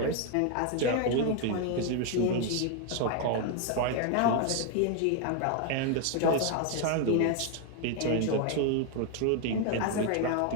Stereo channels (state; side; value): different; both; correlation 0.01